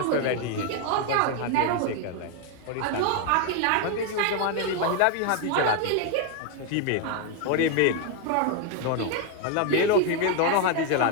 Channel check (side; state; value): both; different; correlation 0.01